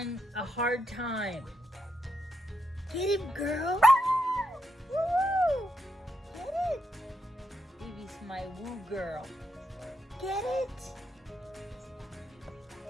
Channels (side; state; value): both; normal; correlation 0.82